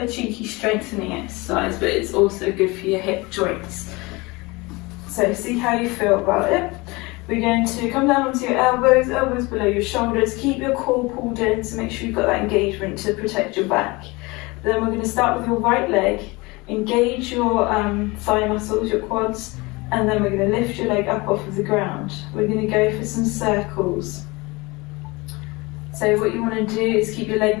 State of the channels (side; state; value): right; quieter; 24.2 dB